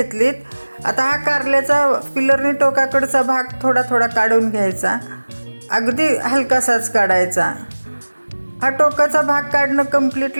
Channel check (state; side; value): inverted; both; correlation -1.00